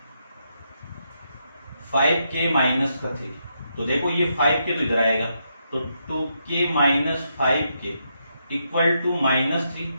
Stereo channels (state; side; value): inverted; both; correlation -0.80